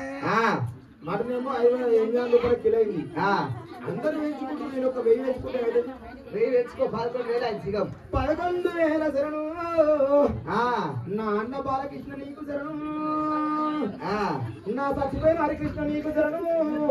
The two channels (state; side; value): identical; both; correlation 1.00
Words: మటనేమో 500 రూపాయలు కిలో అయింది. అందరూ వేయించుకుంటారు, నేను ఒక 1000 వేసుకుంటే 1000 వేసుకో. 11,000 అయింది చికం. 11,000 శరణు నా అన్న బాలకృష్ణ నీకు శరణు, నా సచిపోయిన హరికృష్ణ నీకు శరణు,